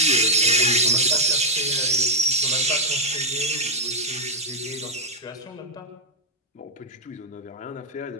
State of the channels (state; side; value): normal; both; correlation -0.01